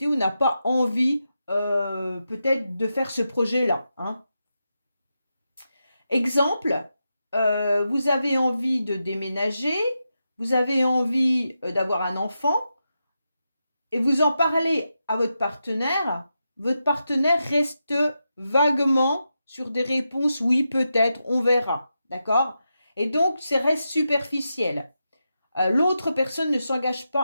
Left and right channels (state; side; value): inverted; both; correlation -0.87